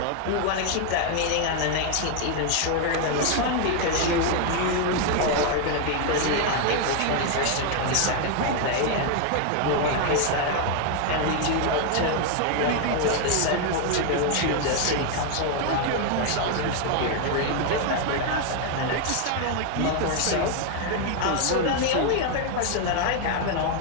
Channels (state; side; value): different; both; correlation 0.00